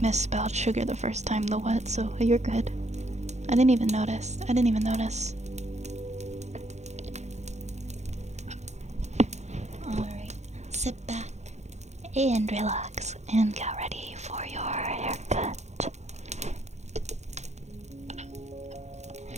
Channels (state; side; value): late; left; 0.33 ms